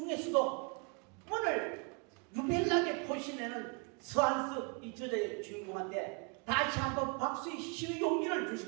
오늘 유별나게 포신하는 서한섭 이 저자의 주인공한테 다시 한번 박수의 시의 용기를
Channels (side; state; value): left; quieter; 34.7 dB